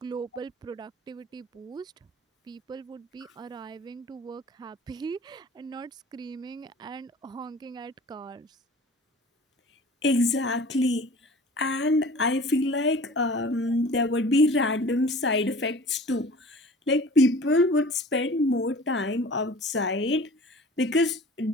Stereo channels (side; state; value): both; normal; correlation 0.44